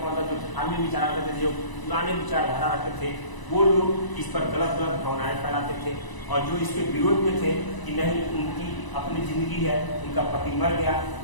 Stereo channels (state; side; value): late; right; 1.0 ms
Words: मतलब जो धार्मिक विचार रखते थे, जो पुराने विचारधारा रखते थे, वो लोग इस पर गलत गलत भावनाएं फैलाते थे, और जो इसके विरोध में थे कि नहीं, उनकी अपनी जिंदगी है, उनका पति मर गया